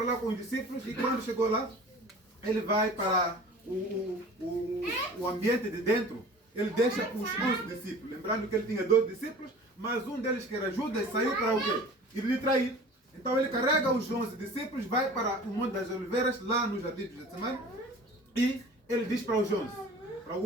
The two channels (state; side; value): normal; both; correlation 0.43